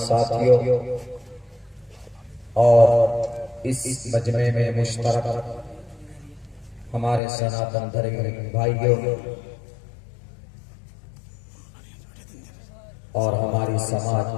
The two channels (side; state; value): right; drops out; at 7.2 s